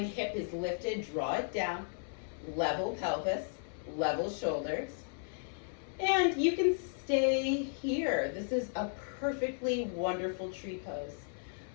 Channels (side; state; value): right; silent; 55 dB below the other